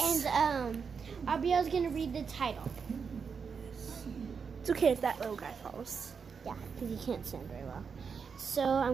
And Abiel's gonna read the title. It's okay if that little guy falls. Yeah, because he can't stand very well. So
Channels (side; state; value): left; quieter; 6.0 dB